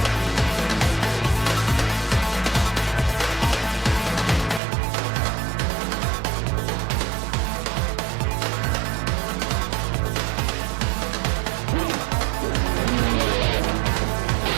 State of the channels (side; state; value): left; drops out; at 4.6 s